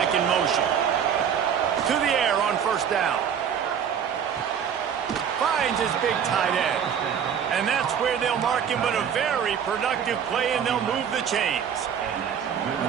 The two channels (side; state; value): left; quieter; 8.0 dB